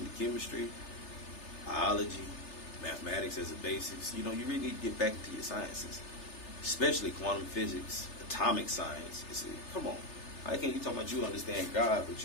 chemistry, biology, mathematics as a basics. You really need to get back into your sciences, especially quantum physics, atomic science. Come on. How can you talk about you understand God, but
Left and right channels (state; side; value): late; right; 3.3 ms